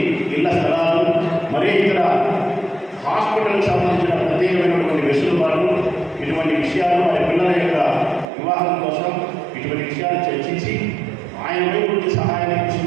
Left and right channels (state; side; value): drops out; left; at 8.2 s